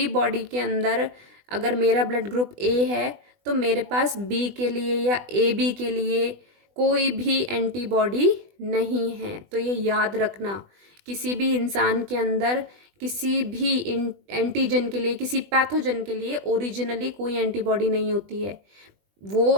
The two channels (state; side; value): late; left; 20 ms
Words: बॉडी के अंदर अगर मेरा ब्लड ग्रुप A है तो मेरे पास B के लिए या AB के लिए कोई भी एंटीबॉडी नहीं है। तो ये याद रखना, किसी भी इंसान के अंदर किसी भी एंटीजन के लिए, किसी पैथोजन के लिए ओरिजिनली कोई एंटीबॉडी नहीं होती है। वो